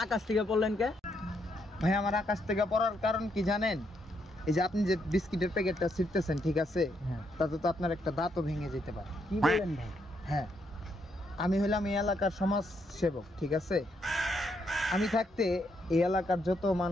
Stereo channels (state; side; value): normal; both; correlation 0.76